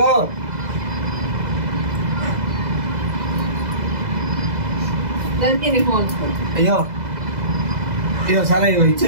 అయ్యో ఇగో సరే ఇగో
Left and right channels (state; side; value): late; left; 2.0 ms